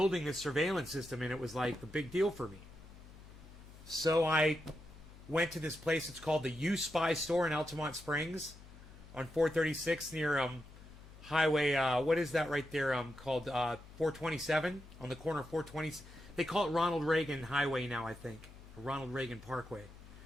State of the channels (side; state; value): left; noise; hum, 19 dB below the sound